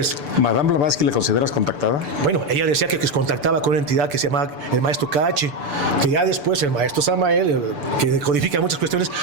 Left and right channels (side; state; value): left; late; 6.9 ms